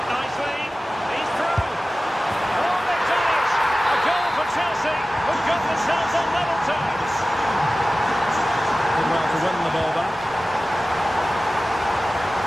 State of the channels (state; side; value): normal; both; correlation 0.96